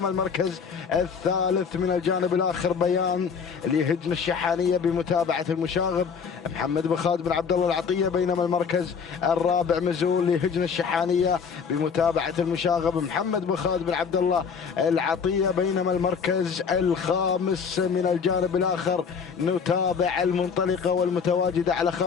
المركز الثالث من الجانب الآخر بيان لهجن الشحانية بمتابعة المشاغب محمد بن خالد بن عبد الله العطية. بينما المركز الرابع مزول لهجن الشحانية بمتابعة المشاغب محمد بن خالد بن عبد الله العطية. بينما المركز الخامس من الجانب الآخر نتابع المنطلقة والمتواجدة على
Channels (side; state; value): right; quieter; 6.2 dB